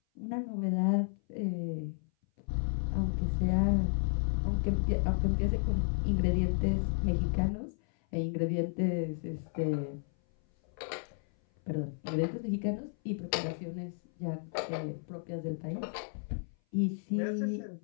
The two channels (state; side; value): silent; right; 56 dB below the other